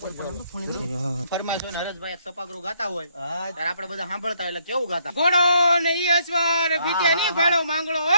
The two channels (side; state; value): both; inverted; correlation -0.69